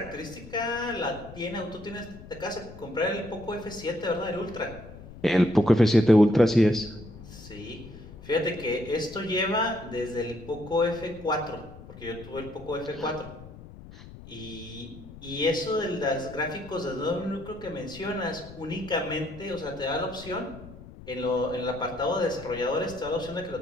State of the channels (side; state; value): left; noise; rumble, 16 dB below the sound